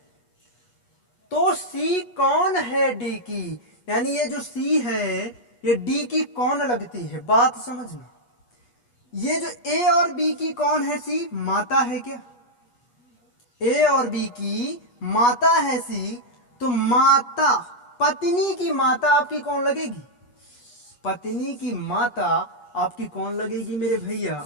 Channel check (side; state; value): right; late; 8.3 ms